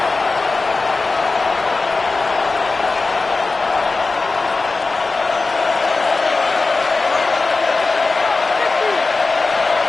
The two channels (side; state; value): right; quieter; 3.8 dB